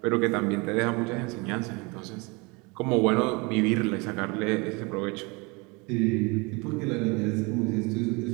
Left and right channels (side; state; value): left; quieter; 27.7 dB